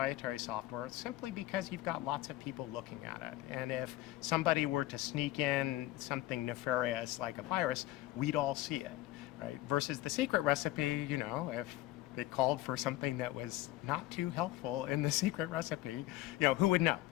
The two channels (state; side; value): quieter; right; 16.2 dB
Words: software, simply because you've got lots of people looking at it. And if somebody were to sneak in something nefarious like a virus, we'd all see it, right? Versus the secret recipe, if it called for something that was not too helpful in the secret recipe, who would know?